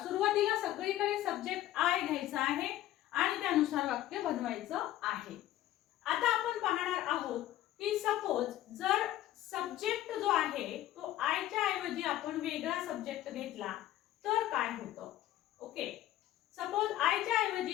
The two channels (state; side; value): quieter; right; 13.8 dB